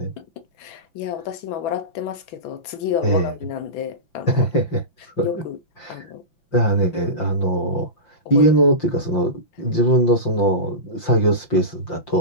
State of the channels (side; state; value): right; late; 5.8 ms